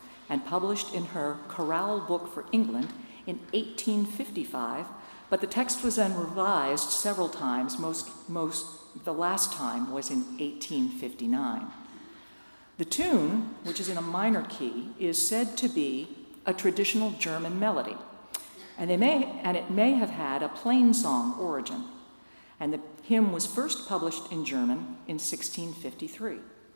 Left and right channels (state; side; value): inverted; both; correlation -1.00